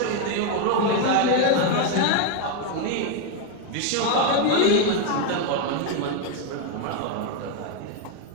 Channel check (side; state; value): both; different; correlation 0.01